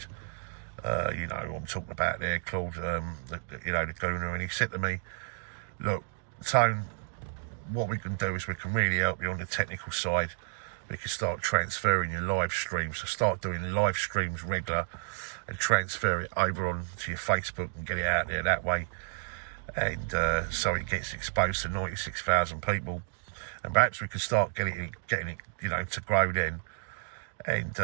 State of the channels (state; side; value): silent; left; digital silence